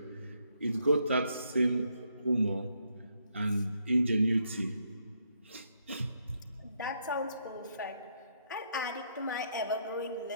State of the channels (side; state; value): both; inverted; correlation -0.75